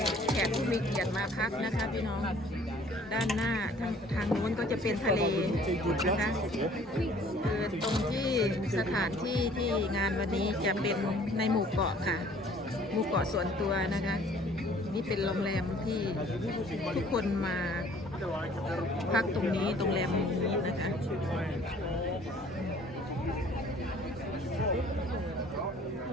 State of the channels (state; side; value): normal; both; correlation 0.55